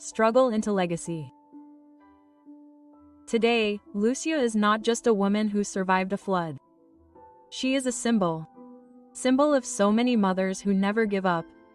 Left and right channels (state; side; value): identical; both; correlation 1.00